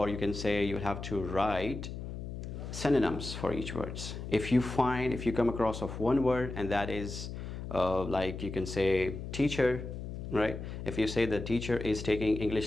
you can say you have to write synonyms for each words. If you come across of one word, and that is like you can say teacher, right? If you say the teacher is taking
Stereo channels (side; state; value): left; noise; hum, 8 dB below the sound